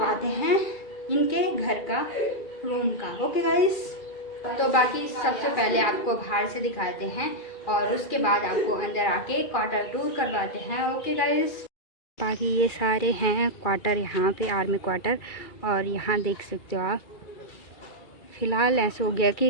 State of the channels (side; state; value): right; late; 2.3 ms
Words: हैं इनके घर का, रूम का। ओके गाइस, तो बाकी सबसे पहले आपको बाहर से दिखाते हैं और उसके बाद आपको अंदर आके क्वार्टर टूर करवाते हैं। ओके गाइस, बाकी ये सारे हैं क्वार्टर, यहाँ पे आर्मी क्वार्टर। और यहाँ देख सकते हो आप, फ़िलहाल ऐसा हो गया